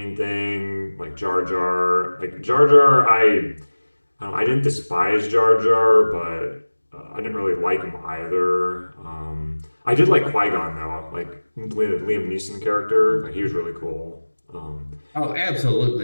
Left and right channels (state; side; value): inverted; both; correlation -1.00